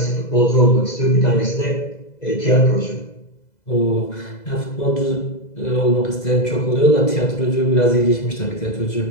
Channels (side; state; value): right; late; 2.0 ms